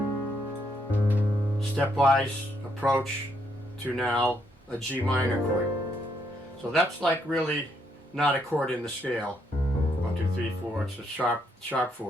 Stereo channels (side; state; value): both; normal; correlation 0.74